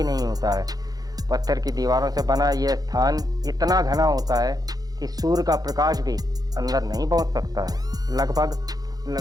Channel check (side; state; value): left; late; 0.19 ms